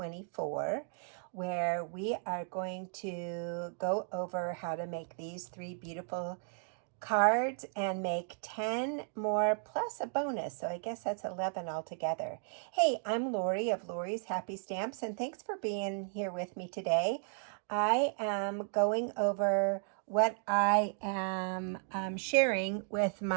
where we are going to go over how to make these 3 beautiful cards and make 10 more plus a bonus. So I guess that's 11 altogether. Hey, I'm Lori of Lori's Happy Stamps, and thanks for being here with me today. I am going over what I am sharing with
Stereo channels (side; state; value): left; silent; 55 dB below the other